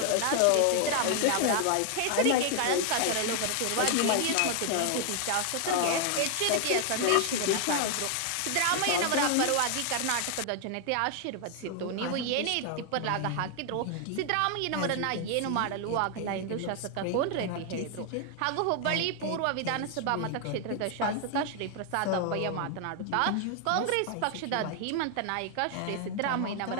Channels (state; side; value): different; both; correlation 0.00